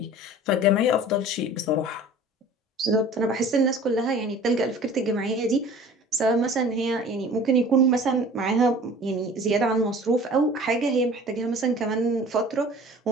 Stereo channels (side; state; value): both; normal; correlation 0.44